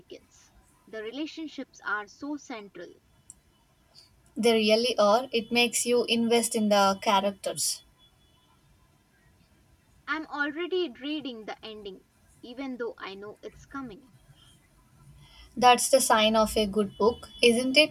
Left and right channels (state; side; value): identical; both; correlation 1.00